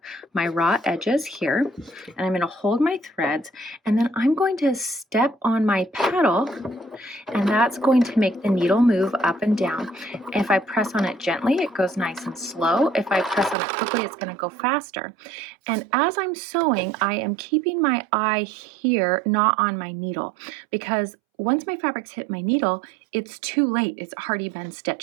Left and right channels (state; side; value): drops out; left; at 13.6 s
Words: my raw edges here, and I'm going to hold my threads, and then I'm going to step on my pedal, and that's going to make the needle move up and down. If I press on it gently, it goes nice and slow. If I press on it quickly, it's going to go faster. And as I'm sewing, I am keeping my eye here, not on my needle, because once my fabrics hit my needle, it's too late. It's already been